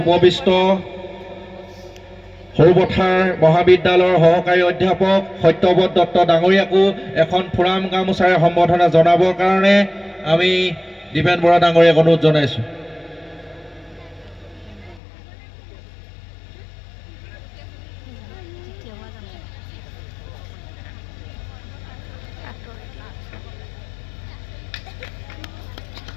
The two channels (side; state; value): right; drops out; at 15.0 s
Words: উপবিষ্ট সৰুপথাৰ মহাবিদ্যালয়ৰ সহকাৰী অধ্যাপক সত্যব্ৰত দত্ত ডাঙৰীয়াকো এখন ফুৰাম গামোচাৰে সম্বৰ্ধনা জনাবৰ কাৰণে আমি দীপেন বৰা ডাঙৰীয়াক অনুৰোধ জনাইছোঁ।